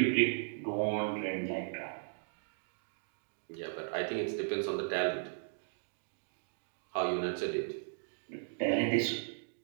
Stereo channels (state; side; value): silent; left; digital silence